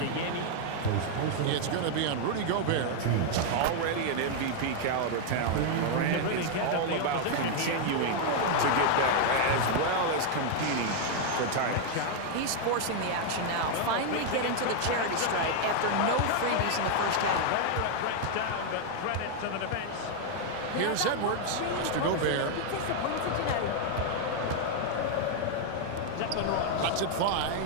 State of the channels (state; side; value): different; both; correlation 0.00